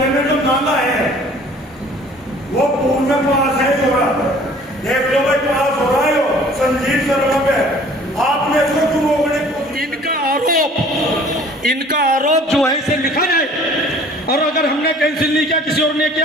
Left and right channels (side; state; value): both; normal; correlation 0.52